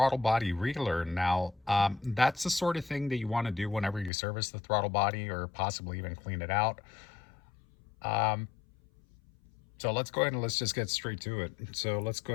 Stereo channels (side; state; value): right; drops out; at 4.1 s